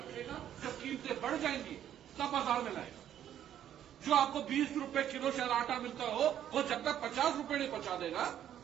जब कीमतें बढ़ जाएंगी तब बाजार में लाएगा। जो आपको 20 रुपए किलो शायद आटा मिलता हो, वो जब तक 50 रुपए नहीं पहुंचा देगा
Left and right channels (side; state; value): left; quieter; 10.6 dB